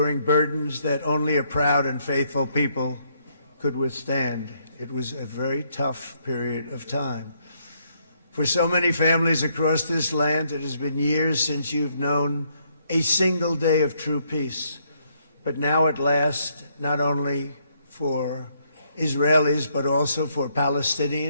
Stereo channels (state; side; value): inverted; both; correlation -0.72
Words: burdens that only a proud and faithful people could withstand. It was a very tough period of time. For so many families across this land, it has been years since you've known a single day of true peace. But now at last, not only for Israelis, but also for